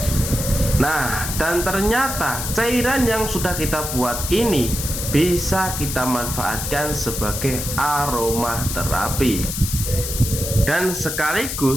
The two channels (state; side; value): noise; left; hiss, 5 dB below the sound